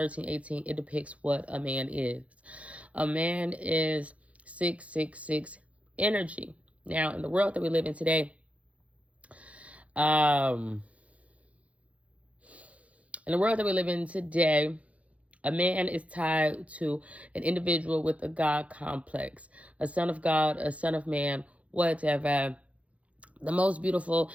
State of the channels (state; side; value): late; left; 0.065 ms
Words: it depicts what a man is. A man is 666 energy. Now, in the world that we live in today, a man is tied to an individual with a God complex, a son of God, a son of man, whatever. The most beautiful,